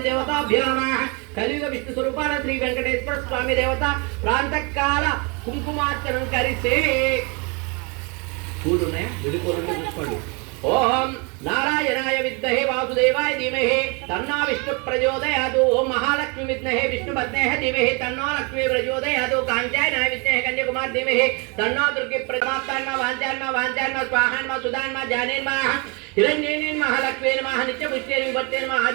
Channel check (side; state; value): left; quieter; 31.3 dB